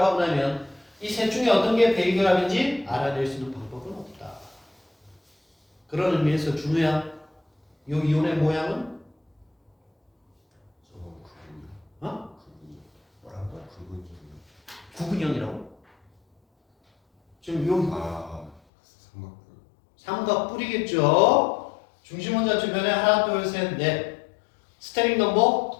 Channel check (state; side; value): drops out; right; at 18.6 s